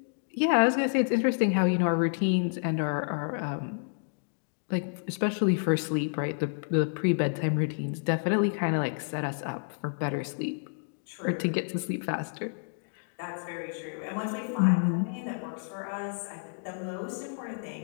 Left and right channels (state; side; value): silent; right; digital silence